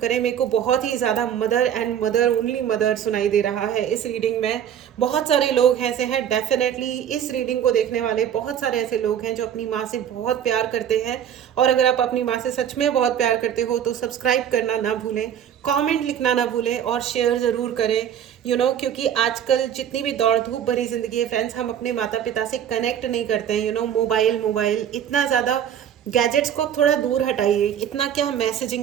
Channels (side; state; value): left; quieter; 9.5 dB